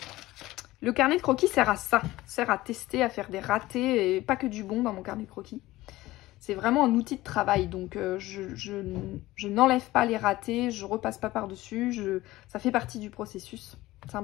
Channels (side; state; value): right; quieter; 17.6 dB